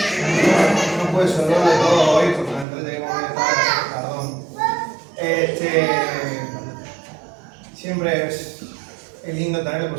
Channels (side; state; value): left; drops out; at 2.7 s